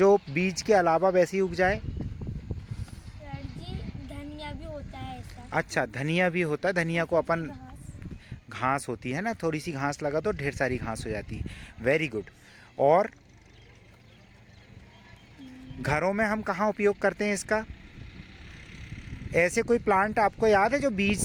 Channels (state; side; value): identical; both; correlation 1.00